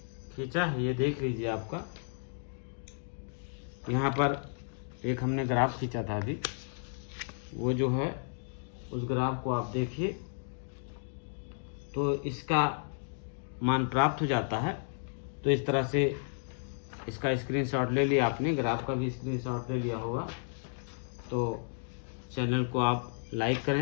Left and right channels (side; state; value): right; silent; digital silence